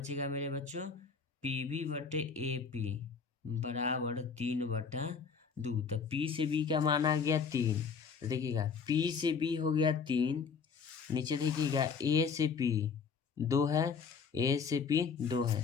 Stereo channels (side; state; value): right; quieter; 5.7 dB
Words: मेरे बच्चों, पी बी बटे ए पी बराबर 3/2। तो पी से बी का मान आ गया 3। तो देखिएगा पी से बी हो गया 3, नीचे देखिएगा ए से पी 2 है, ए से पी 2 है,